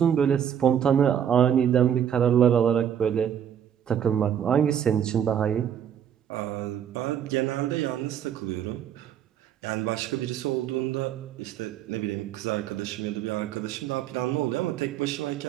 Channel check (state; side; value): quieter; left; 9.1 dB